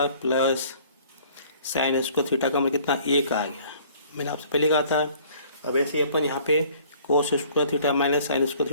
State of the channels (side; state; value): both; inverted; correlation -0.55